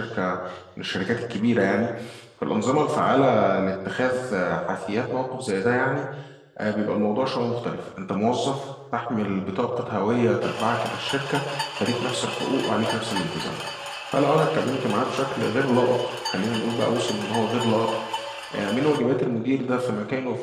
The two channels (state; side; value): identical; both; correlation 1.00